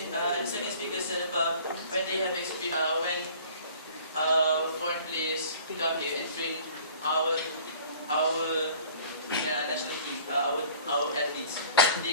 second speaker said about when they have when foreign players come here and train our national team, our athletes,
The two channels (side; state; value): both; inverted; correlation -0.49